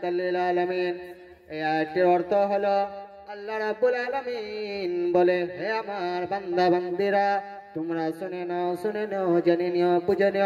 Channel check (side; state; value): both; identical; correlation 1.00